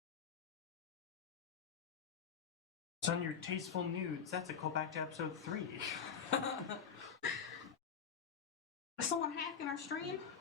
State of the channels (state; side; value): quieter; right; 7.0 dB